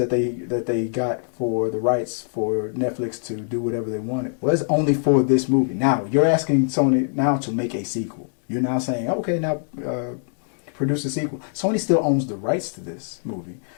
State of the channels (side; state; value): right; silent; digital silence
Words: they got for the rights for Netflix to do whatever they wanted was only for this movie. Now you're asking Sony now to make a sequel. You're now saying, okay, now produce a sequel. Sony still owns the rights to this movie.